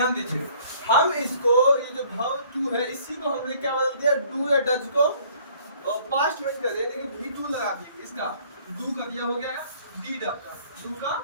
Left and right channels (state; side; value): inverted; both; correlation -0.57